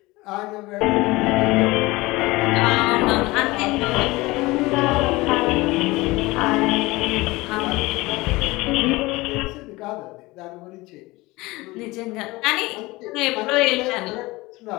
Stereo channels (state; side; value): quieter; right; 21.3 dB